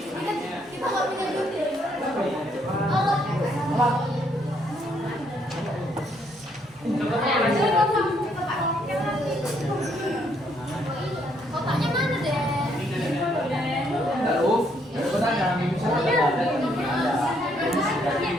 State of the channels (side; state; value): both; normal; correlation 0.71